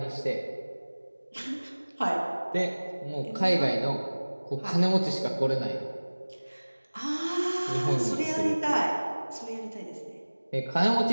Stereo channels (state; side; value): inverted; both; correlation -1.00